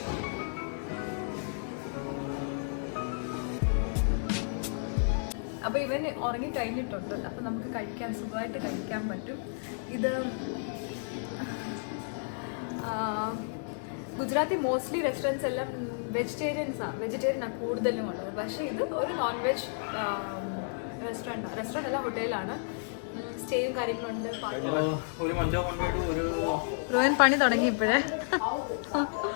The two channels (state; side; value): silent; right; digital silence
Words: അപ്പോൾ ഇവൻ ഉറങ്ങി കഴിഞ്ഞിട്ടുണ്ട്. അപ്പം നമുക്ക് സുഖമായിട്ട് കഴിക്കാൻ പറ്റും. ഇത് ഗുജറാത്തി മോസ്റ്റ്ലി റെസ്റ്റോറൻറ്റ്സ് എല്ലാം വെജിറ്റേറിയനാണ് കൂടുതലും ഉള്ളത്. പക്ഷേ ഇത് ഒരു നോൺ വെജ് റെസ്റ്റോറൻറ്റ് അല്ല, ഹോട്ടലാണ്. സ്റ്റേയും കാര്യങ്ങളുണ്ട്. റോയൻ പണി തുടങ്ങി ഇപ്പോഴേ.